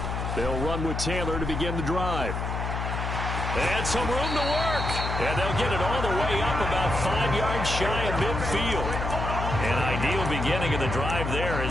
They'll run with Taylor to begin the drive. And some room to work. And they'll get it all the way up about 5 yards shy of midfield. An ideal beginning of the drive there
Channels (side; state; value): left; noise; hum, 3 dB below the sound